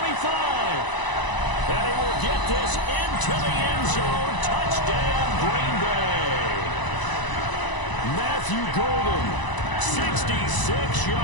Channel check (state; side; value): late; right; 1.0 ms